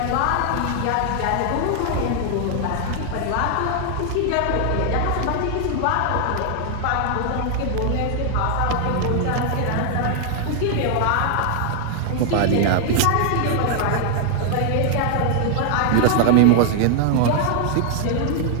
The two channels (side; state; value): both; different; correlation 0.00